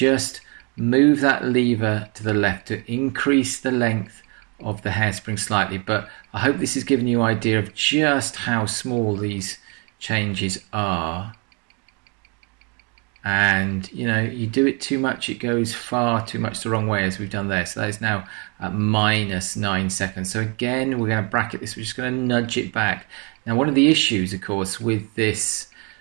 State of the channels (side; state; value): left; quieter; 33.9 dB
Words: move that lever to the left to increase the length of the hairspring slightly. But I hope this has given you an idea of just how small these changes are. And you know, you do it too much, it goes far too much the wrong way, as we've done there. So that is now at minus 9 seconds. So again, we're going to bracket this, we're just going to nudge it back. Now one of the issues of course with this